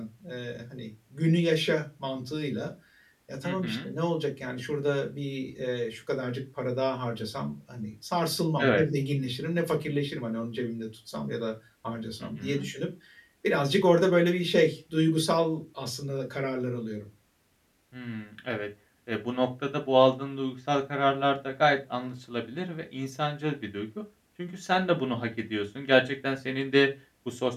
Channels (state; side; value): identical; both; correlation 1.00